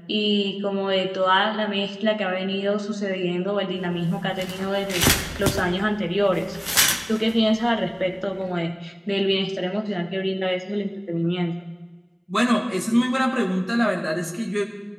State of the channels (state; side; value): identical; both; correlation 1.00